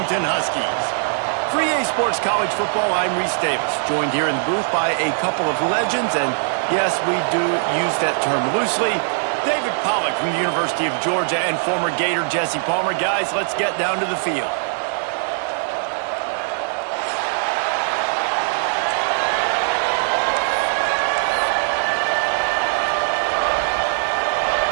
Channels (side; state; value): left; silent; digital silence